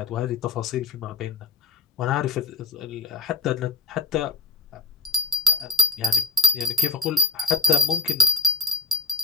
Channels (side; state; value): right; quieter; 3.7 dB